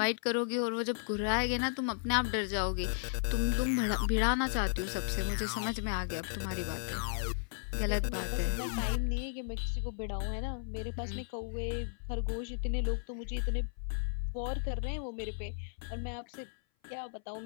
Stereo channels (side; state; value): right; silent; 55 dB below the other